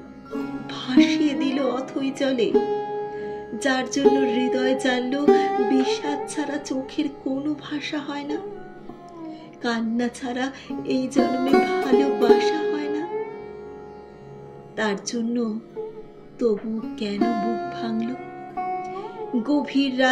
ভাসিয়ে দিল অথই জলে, যার জন্য হৃদয় জানল বিষাদ ছাড়া চোখের কোনো ভাষা হয় না, কান্না ছাড়া এই জন্মে ভালোবাসা হয় না। তার জন্য তবু কেন বুক ভাঙল, গভীর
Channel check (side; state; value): both; identical; correlation 1.00